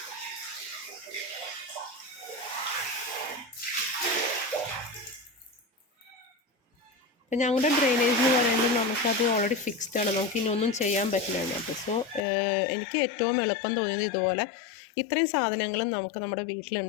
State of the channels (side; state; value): right; drops out; at 12.2 s